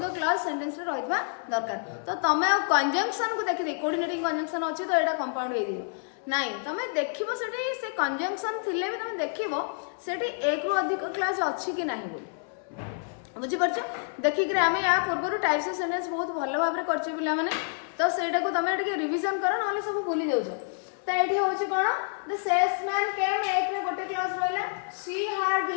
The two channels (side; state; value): right; silent; digital silence